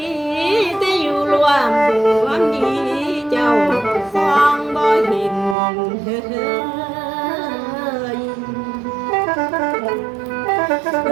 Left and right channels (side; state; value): left; drops out; at 5.6 s